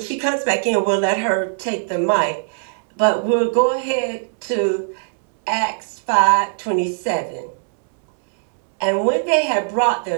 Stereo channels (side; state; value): left; silent; digital silence